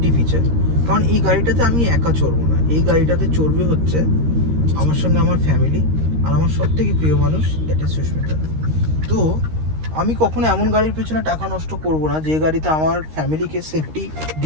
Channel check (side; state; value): left; late; 13 ms